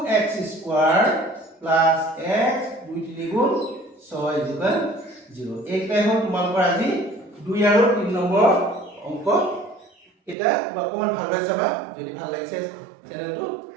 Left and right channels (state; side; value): drops out; left; at 10.4 s